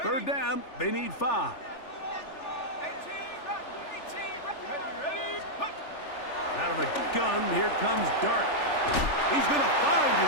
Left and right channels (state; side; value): late; right; 3.4 ms